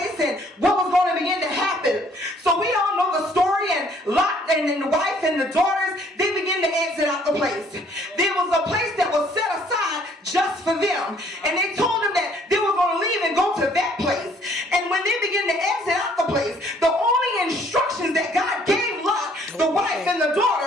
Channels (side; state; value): both; normal; correlation 0.61